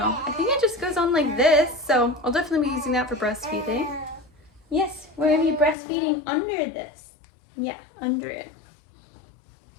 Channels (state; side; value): drops out; right; at 5.8 s